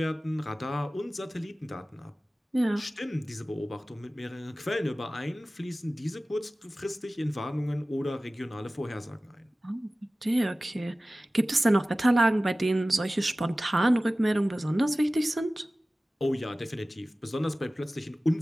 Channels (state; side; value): normal; both; correlation 0.96